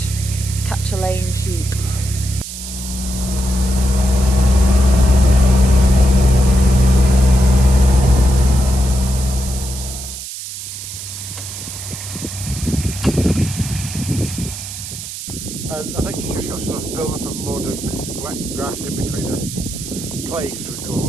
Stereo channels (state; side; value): noise; right; hiss, 9 dB below the sound